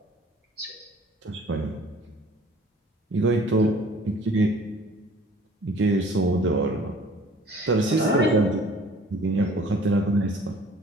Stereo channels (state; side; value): normal; both; correlation 0.51